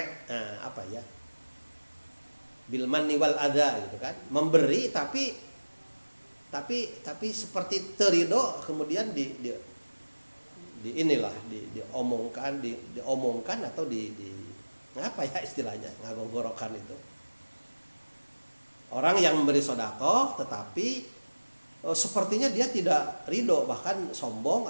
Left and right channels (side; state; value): both; inverted; correlation -1.00